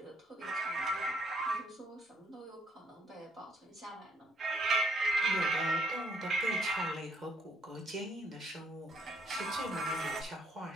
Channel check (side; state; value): both; normal; correlation 0.68